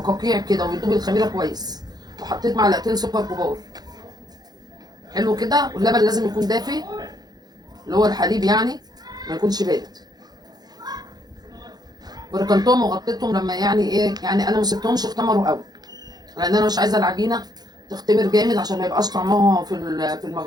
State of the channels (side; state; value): left; late; 0.19 ms